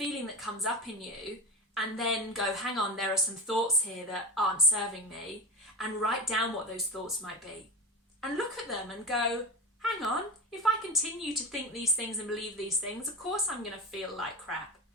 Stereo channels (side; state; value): both; normal; correlation 0.21